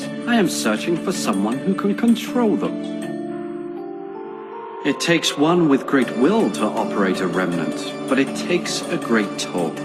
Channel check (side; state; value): both; identical; correlation 1.00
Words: I am searching for someone who can control them. It takes one with great will to operate a Remnant, but it takes a great toll.